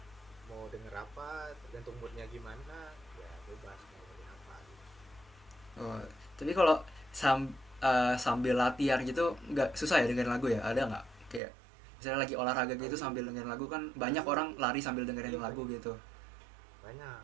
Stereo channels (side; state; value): left; drops out; at 11.4 s